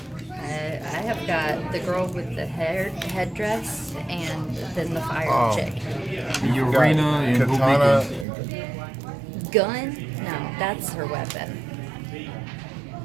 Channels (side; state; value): left; drops out; at 8.2 s